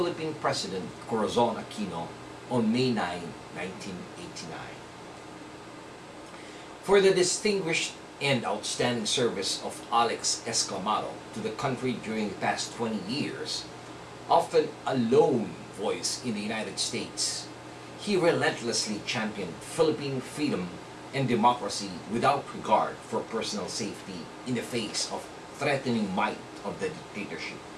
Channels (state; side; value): identical; both; correlation 1.00